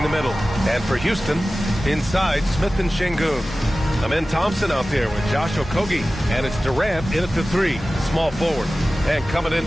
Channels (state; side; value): normal; both; correlation 0.96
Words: the middle. And for Houston, inside, Smith and Şengün. Amen Thompson out there with Josh Okogie. And it's Durant in at the 3, small forward. And coming